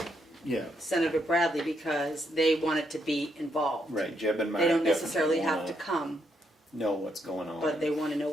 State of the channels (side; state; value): both; normal; correlation 0.77